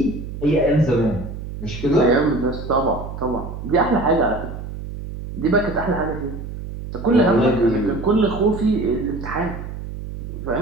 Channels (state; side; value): noise; right; hum, 9 dB below the sound